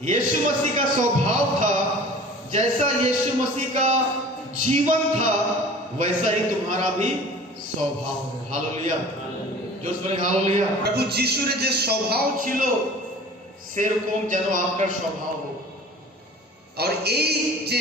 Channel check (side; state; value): both; normal; correlation 0.44